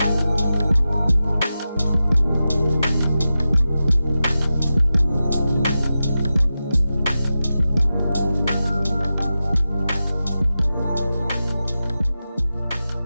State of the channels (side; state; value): both; inverted; correlation -0.92